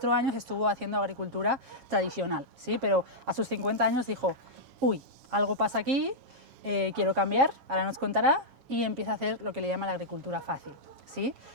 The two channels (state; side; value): late; left; 7.4 ms